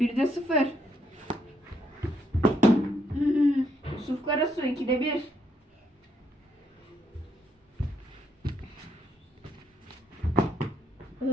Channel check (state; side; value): normal; both; correlation 0.74